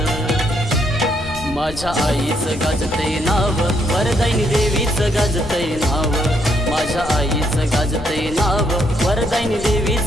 माझ्या आईचं गाजतय नाव, वरदायिनी देवीचं गाजतय नाव। माझ्या आईचं गाजतय नाव, वरदायिनी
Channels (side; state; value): left; noise; rumble, 13 dB below the sound